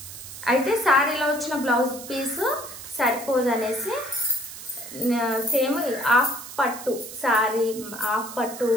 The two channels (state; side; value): noise; right; hiss, 13 dB below the sound